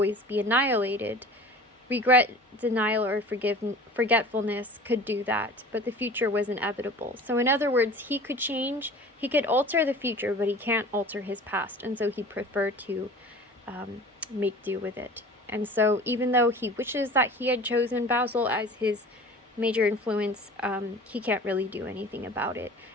be annihilated. Regret, denial, or forgetfulness could do that, but the future was inevitable. So in other words, he could change, he could alter the future, but he can't alter his past, and so he preferred to make do with it. And so even though he wishes that he had chosen Basil as his major influence, he can't really do anything about it,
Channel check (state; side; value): normal; both; correlation 0.41